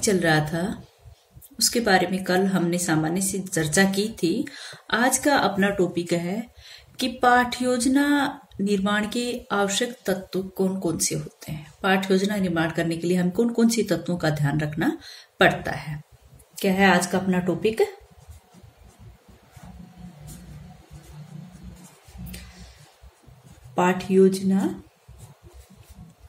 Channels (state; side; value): identical; both; correlation 1.00